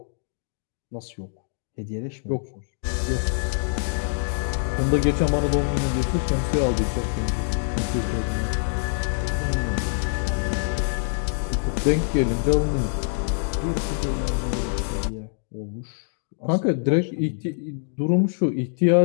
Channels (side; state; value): right; silent; digital silence